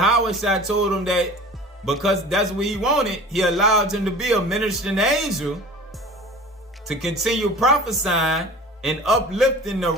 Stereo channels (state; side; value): normal; both; correlation 0.41